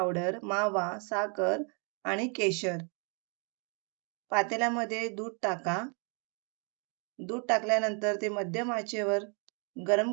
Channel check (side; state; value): left; quieter; 37.9 dB